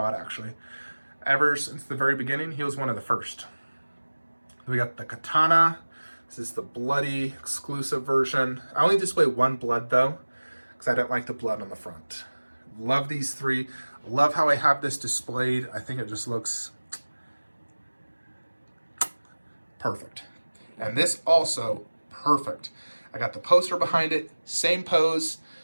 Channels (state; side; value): inverted; both; correlation -1.00